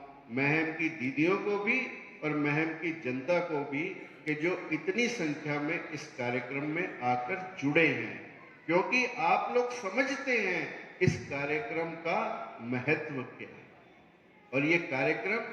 महम की दीदियों को भी और महम की जनता को भी कि जो इतनी संख्या में इस कार्यक्रम में आकर जुड़े हैं, क्योंकि आप लोग समझते हैं इस कार्यक्रम का महत्व क्या है। और ये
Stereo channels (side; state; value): both; identical; correlation 1.00